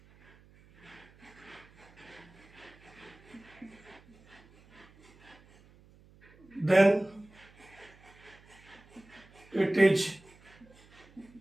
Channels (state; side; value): noise; right; hum, 26 dB below the sound